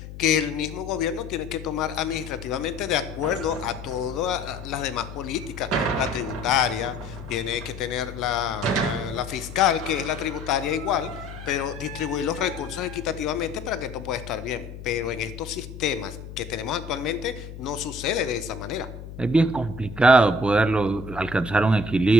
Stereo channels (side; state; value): left; noise; hum, 12 dB below the sound